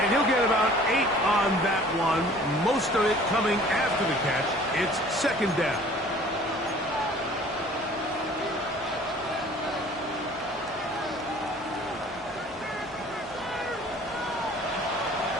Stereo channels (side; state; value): left; noise; hum, 25 dB below the sound